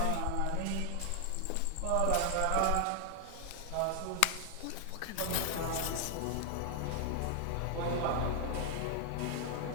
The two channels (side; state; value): both; different; correlation 0.00